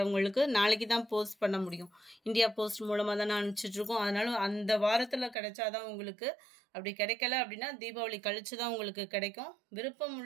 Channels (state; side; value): drops out; left; at 5.4 s